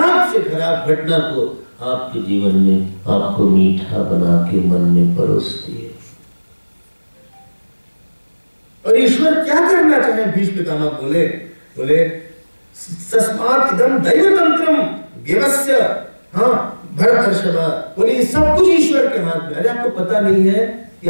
से खराब घटना को आपके जीवन में आपको मीठा बना के मन में परोसती है। और ईश्वर क्या करना चाहे, भीष्म पितामह बोले तस्मात् इदं दैवतंत्रम व्यवस्य, हाँ भरतर्षभ, बोले सब कुछ ईश्वर के हाथ में। अरे आपको पता नहीं है कि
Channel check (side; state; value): both; inverted; correlation -1.00